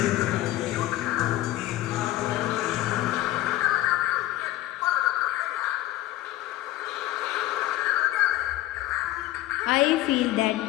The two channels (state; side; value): quieter; right; 15.5 dB